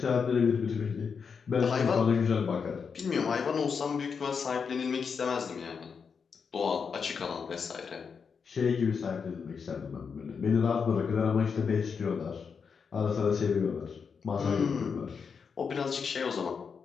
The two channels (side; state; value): right; quieter; 6.0 dB